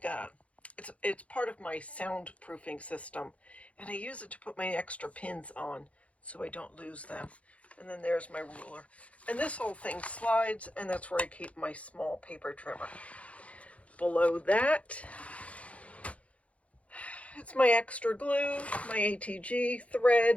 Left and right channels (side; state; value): right; late; 0.064 ms